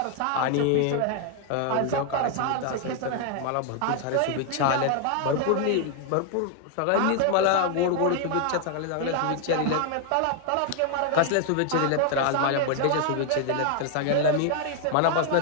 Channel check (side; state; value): both; different; correlation 0.00